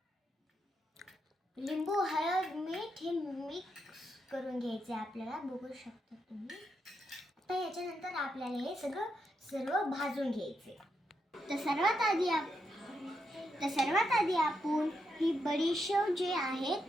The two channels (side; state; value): both; normal; correlation 0.82